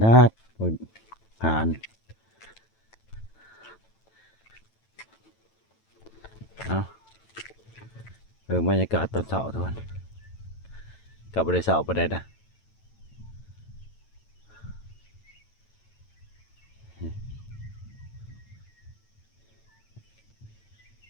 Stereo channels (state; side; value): late; right; 9.0 ms